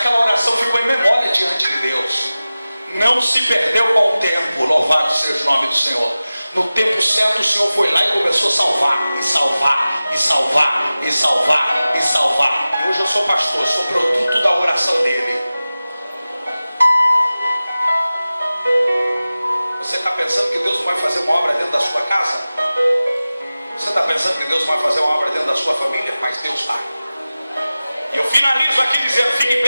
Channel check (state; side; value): inverted; both; correlation -0.96